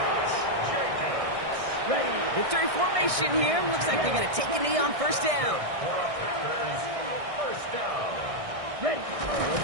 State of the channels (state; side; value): late; left; 1.6 ms